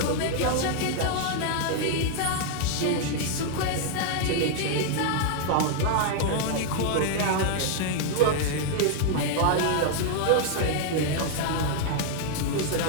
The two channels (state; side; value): different; both; correlation 0.00